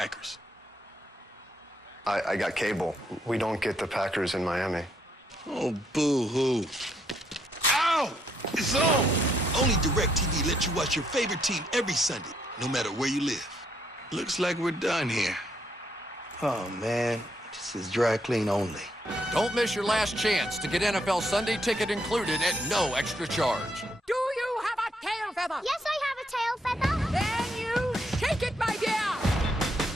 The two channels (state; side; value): normal; both; correlation 0.74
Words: I got cable. We don't get the Packers in Miami. Oh, boo-hoo. Ow! It's on! Only DirecTV lets you watch your favorite team every Sunday, no matter where you live. Looks like we're done here. Oh, man. This is dry clean only. Don't miss your last chance to get NFL Sunday ticket included at no extra charge. Do you have a tail feather? Yes, I have a tail feather. Then you shake it, my dear.